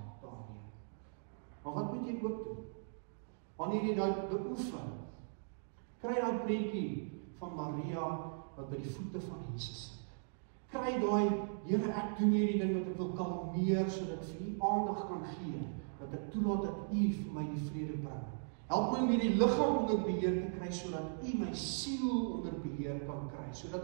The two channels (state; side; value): silent; left; digital silence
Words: daarmee. Maar wat moet jy ook doen? Wanneer jy dit beoefen, kry daai prentjie van Maria wat by die voete van Jesus sit. Kry daai, Here, ek doen hierdie ding wat ek wil kalmeer, sodat ek vir U aandag kan gee, dat ek toelaat dat U vir my die vrede bring. Help my om hierdie liggaam onder beheer te kry, sodat U my siel onder beheer kan kry,